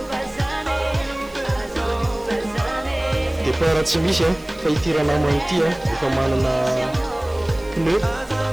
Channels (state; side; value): noise; right; hiss, 27 dB below the sound